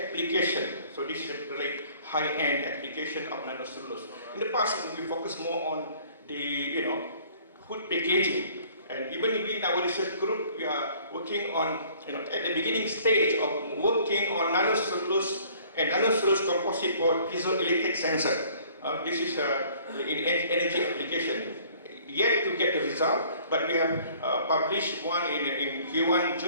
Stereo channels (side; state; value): both; inverted; correlation -0.55